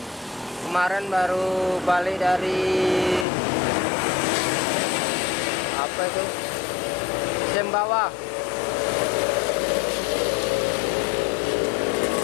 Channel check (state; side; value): drops out; right; at 3.2 s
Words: Kemarin baru balik dari apa itu? Sembawah.